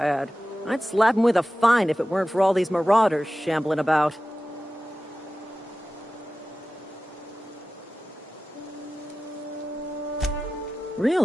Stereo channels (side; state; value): both; normal; correlation 0.95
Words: I'd slap him with a fine if it weren't for all these marauders shambling about.